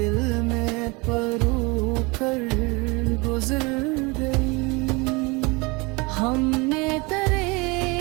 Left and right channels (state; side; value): quieter; left; 26.6 dB